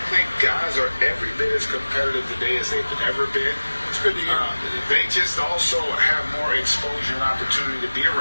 think guys are every bit as competitive today as they've ever been. It's good to hear. They just also have more exposure and opportunity to be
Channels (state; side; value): inverted; both; correlation -1.00